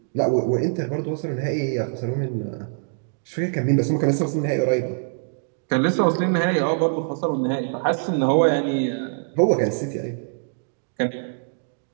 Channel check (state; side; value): silent; left; digital silence